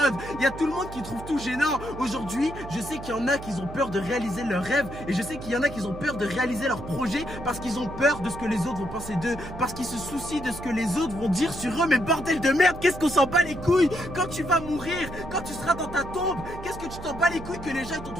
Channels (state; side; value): noise; right; hum, 12 dB below the sound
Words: Il y a tout le monde qui trouve tout gênant. Aujourd'hui, je sais qu'il y en a qui ont peur de réaliser leurs rêves et je sais qu'il y en a qui ont peur de réaliser leurs projets parce qu'ils ont peur de ce que les autres vont penser d'eux, parce qu'ils se soucient de ce que les autres vont dire sur eux. Mais bordel de merde, qu'est-ce qu'on s'en bat les couilles quand tu vas mourir, quand tu seras dans ta tombe? Qu'est-ce que tu t'en bats les couilles que les gens t'ont